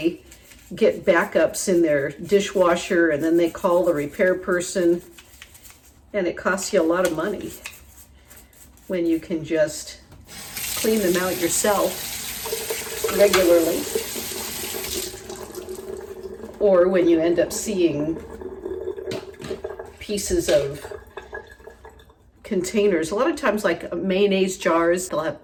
get backups in their dishwasher, and then they call the repair person, and it costs you a lot of money when you can just clean them out yourself regularly. Or when you end up seeing pieces of containers. A lot of times, like mayonnaise jars, they'll have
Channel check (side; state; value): both; identical; correlation 1.00